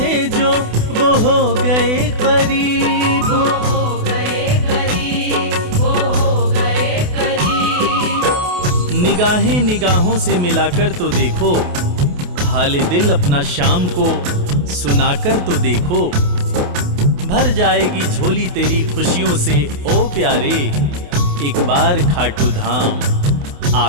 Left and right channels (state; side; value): late; left; 28 ms